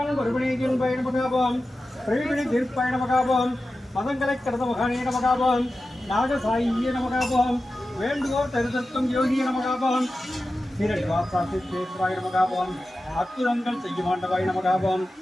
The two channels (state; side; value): normal; both; correlation 0.93